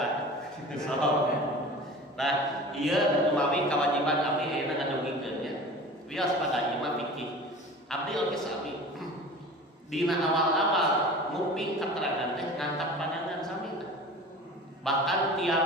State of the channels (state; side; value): normal; both; correlation 0.38